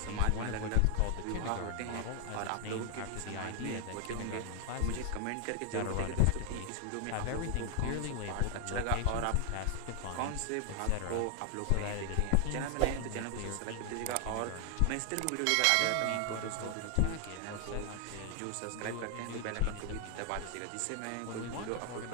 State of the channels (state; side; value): different; both; correlation 0.00